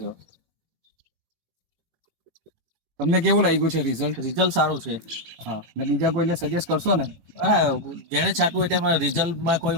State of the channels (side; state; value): left; late; 18 ms